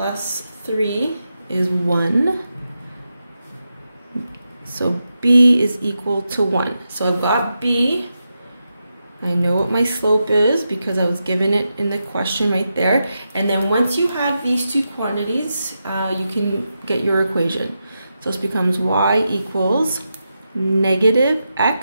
3 is 1. So b is equal to 1. So I've got b. I know what my slope is because I was given it in the question right there. And then once you have these two quantities, you can get your equation. So this becomes y equals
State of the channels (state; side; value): inverted; both; correlation -0.88